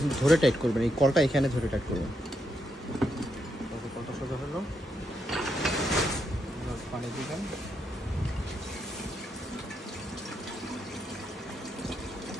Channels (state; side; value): normal; both; correlation 0.80